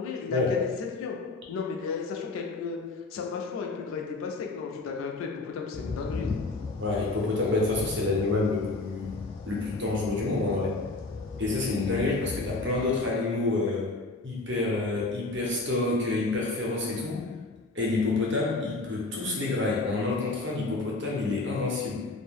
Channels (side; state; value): right; quieter; 3.1 dB